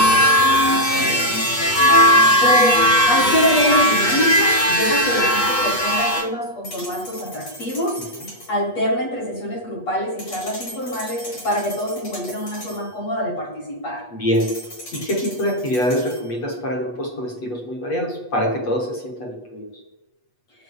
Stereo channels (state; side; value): late; right; 8.2 ms